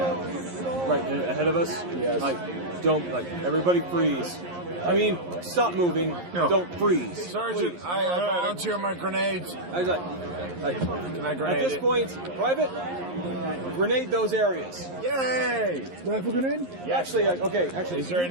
Right, ahead of us? Yes. Everybody freeze. I mean, stop moving, don't freeze. Sergeant, I volunteer my grenades. Can I grenade At this point, Private, grenade those areas. Yay! Rifle grenade? Yeah. Actually, Is there you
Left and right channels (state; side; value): late; left; 11 ms